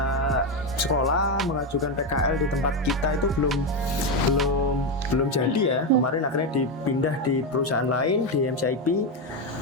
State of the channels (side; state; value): both; normal; correlation 0.10